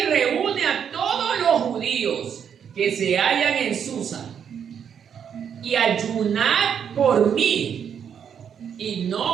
reúne a judíos que se hallan en Susa, y ayunad por mí, y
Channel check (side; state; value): left; quieter; 7.9 dB